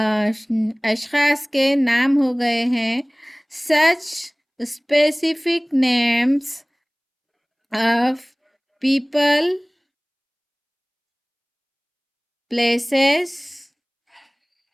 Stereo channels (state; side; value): identical; both; correlation 1.00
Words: अशख़ास के नाम हो गए हैं। सच specific names of people, places